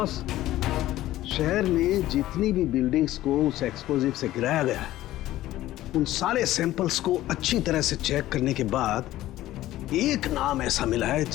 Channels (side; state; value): right; quieter; 15.0 dB